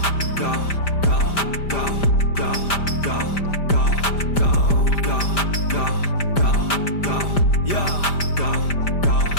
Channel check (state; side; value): late; right; 5.0 ms